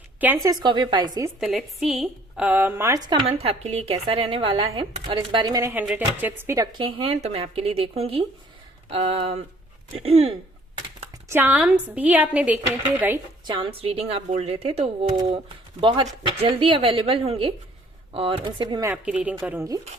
कैंसर, स्कॉर्पियो, पाइसिस, तो लेट्स सी मार्च का मंथ आपके लिए कैसा रहने वाला है। और इस बारे मैंने 100 टिप्स भी रखे हैं तो मैं आपके लिए देखूंगी। चार्म्स भी आपने देखने थे, राइट? चार्म्स रीडिंग आप बोल रहे थे, तो वो बहुत जल्दी अवेलेबल होंगे और उनसे भी मैं आपकी रीडिंग करूंगी।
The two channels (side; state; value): both; normal; correlation 0.58